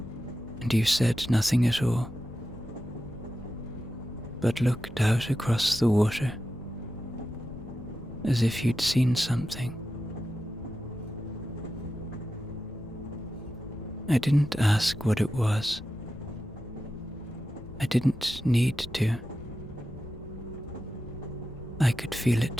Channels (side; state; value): both; normal; correlation 0.91